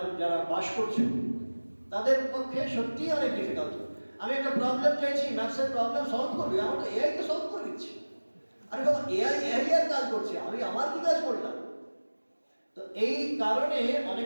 যারা বাস করছে তাদের পক্ষে সত্যিই অনেক ডিফিকাল্ট। আমি একটা প্রবলেম চাইছি, ম্যাথসের প্রবলেম সলভ করবি, আমার তো এআইকে সলভ করে দিচ্ছি। আরে বাবা, এআই এর কাজ করছে, আমি আমার কি কাজ করলাম? তো এই কারণে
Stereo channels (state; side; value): inverted; both; correlation -1.00